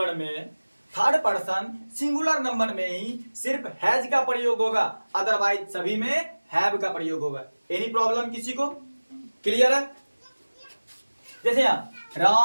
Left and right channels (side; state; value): both; inverted; correlation -1.00